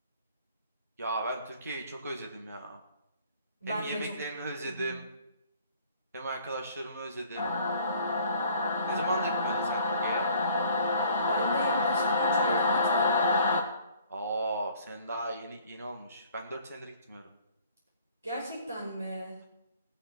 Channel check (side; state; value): both; inverted; correlation -0.56